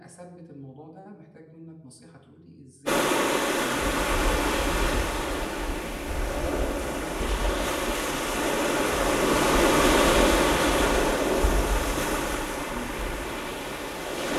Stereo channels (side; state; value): both; identical; correlation 1.00